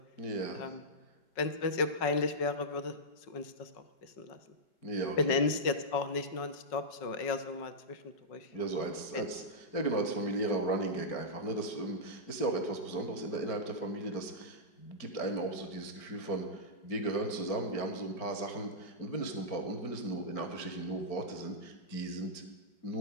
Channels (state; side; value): late; right; 5.4 ms